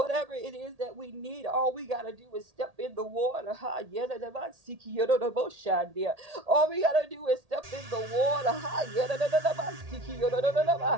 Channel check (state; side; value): late; left; 1.8 ms